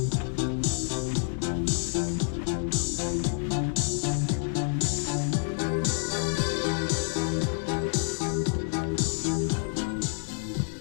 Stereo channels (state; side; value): silent; right; 59 dB below the other